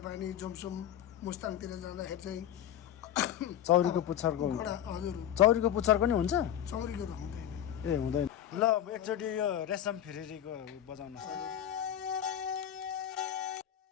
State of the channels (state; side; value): quieter; right; 10.7 dB